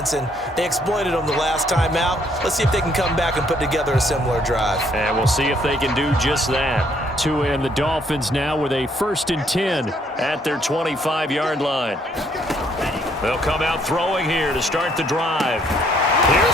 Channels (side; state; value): both; normal; correlation 0.67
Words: and they exploited them the last time out. Let's see if they can come back and put together a similar drive. And we'll see if they can do just that. Tua and the Dolphins now with a 1st and 10 at their 25-yard line. They'll come out throwing here to start the drive.